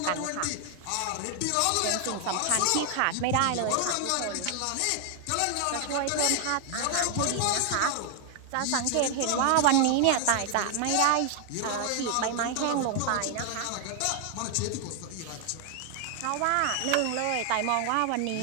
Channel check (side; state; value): both; different; correlation 0.00